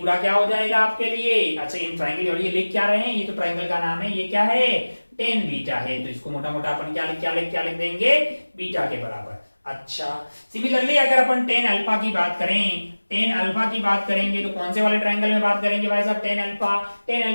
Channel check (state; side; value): inverted; both; correlation -1.00